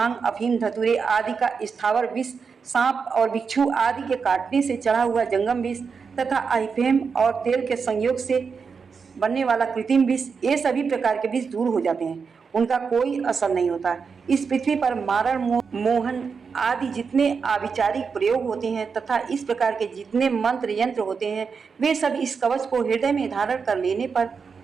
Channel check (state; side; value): quieter; left; 5.6 dB